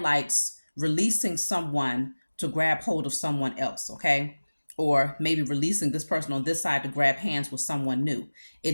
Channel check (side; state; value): both; inverted; correlation -1.00